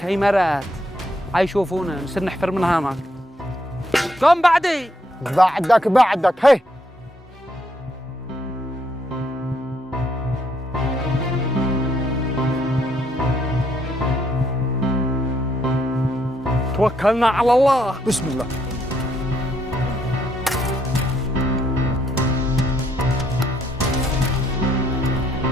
عمارات هيشوفونا نصير نحفر من هناك. قم بعدي. بعدك هي. توكلنا على الله. بسم الله.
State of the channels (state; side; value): normal; both; correlation 0.73